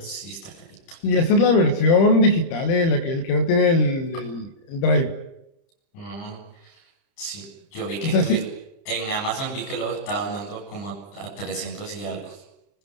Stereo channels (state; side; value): late; right; 30 ms